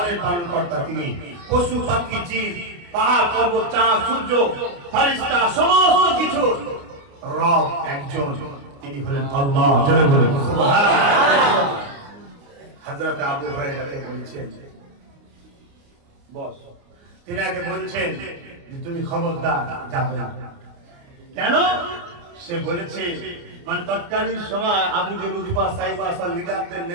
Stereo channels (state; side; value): late; left; 29 ms